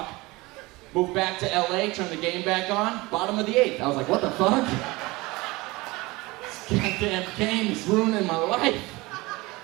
Moved back to LA, turned the game back on, bottom of the 8th. I was like, what the fuck? This goddamn game is ruining my life.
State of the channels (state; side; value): quieter; left; 22.2 dB